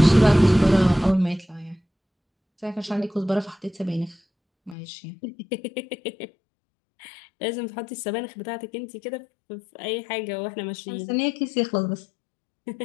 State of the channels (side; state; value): right; drops out; at 4.8 s